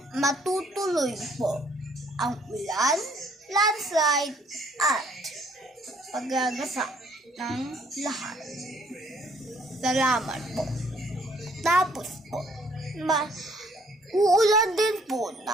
matutuloy po ang ulan, landslide at paggagasa ng lahat. Salamat po. Tapos po, uulan din po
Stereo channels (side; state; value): both; normal; correlation 0.63